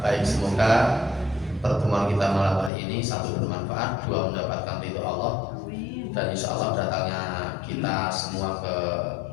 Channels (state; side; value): drops out; right; at 2.7 s